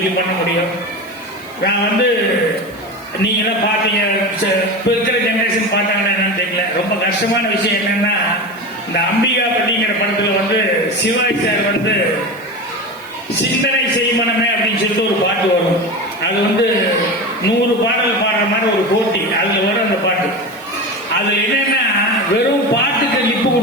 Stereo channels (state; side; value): noise; right; hiss, 25 dB below the sound